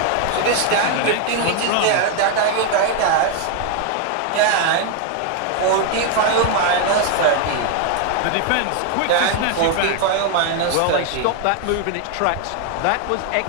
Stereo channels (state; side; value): different; both; correlation 0.01